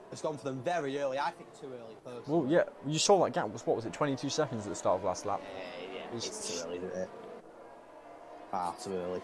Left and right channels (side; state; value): both; identical; correlation 1.00